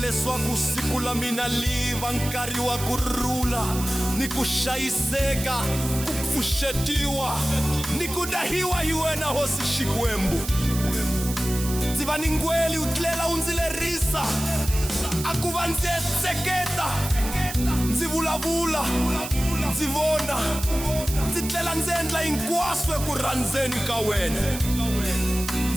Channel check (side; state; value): right; noise; hiss, 9 dB below the sound